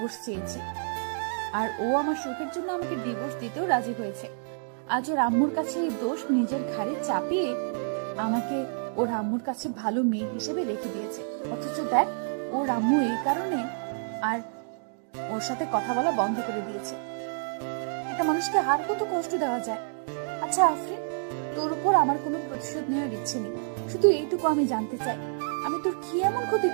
চেয়েছি, আর ও আমার সুখের জন্য আমাকে ডিভোর্স দিতেও রাজি হয়েছে। আজ ওর আম্মুর কাছে এই দোষ নিজের ঘাড়ে চাপিয়ে আমাকে ওর আম্মুর কাছে ভালো মেয়ে হিসেবে রেখে দিয়েছে। অথচ দেখ, ওর আম্মু এই কারণে আর ওর সাথে কথা বলা বন্ধ করে দিয়েছে। একটা মানুষকে আর কত কষ্ট দেওয়া যায়। আচ্ছা আফরিন, তোর উপর আমার কোনো প্রতিশোধ নেওয়ার ইচ্ছে নেই। শুধু এইটুকু আমি জানতে চাই, আমি তোর কি এমন ক্ষতি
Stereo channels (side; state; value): left; silent; digital silence